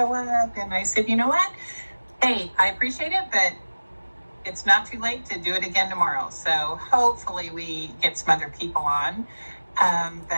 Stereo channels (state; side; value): inverted; both; correlation -1.00